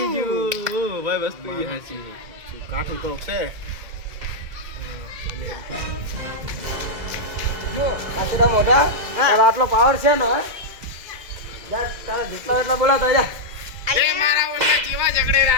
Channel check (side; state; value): left; late; 2.0 ms